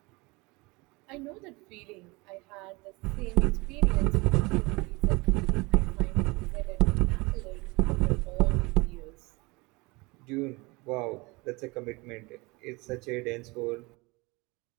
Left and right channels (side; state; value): left; quieter; 25.3 dB